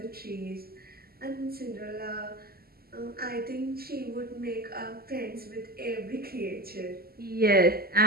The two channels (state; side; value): late; left; 0.45 ms